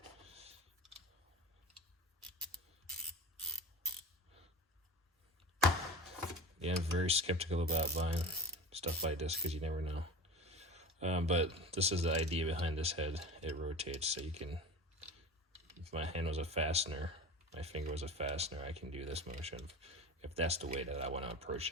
Yeah, I'm very skeptical about buying stuff like this because you never know. But this is the idea behind this head. It rotates, so you can, if my hand was a fastener, my finger was a fastener, I can do this motion if that's the way that I want to approach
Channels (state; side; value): normal; both; correlation 0.32